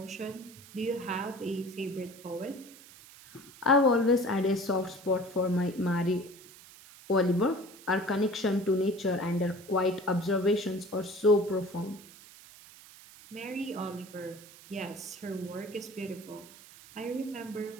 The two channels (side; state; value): right; noise; hiss, 20 dB below the sound